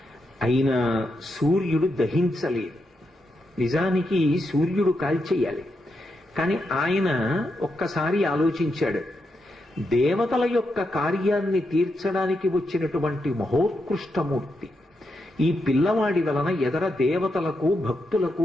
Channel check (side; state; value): both; normal; correlation 0.84